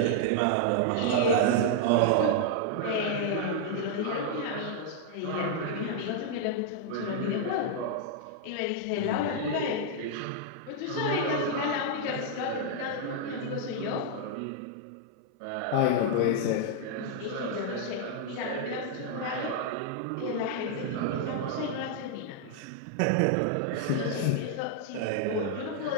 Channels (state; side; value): different; both; correlation -0.01